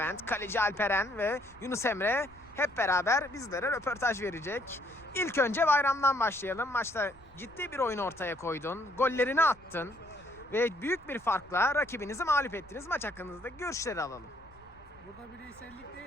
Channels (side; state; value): left; noise; rumble, 27 dB below the sound